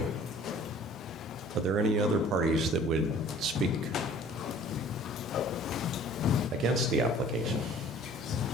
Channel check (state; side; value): normal; both; correlation 0.50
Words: Are there any other parties that would speak against the application?